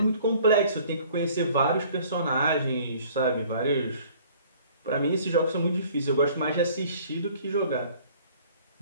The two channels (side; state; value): both; inverted; correlation -0.54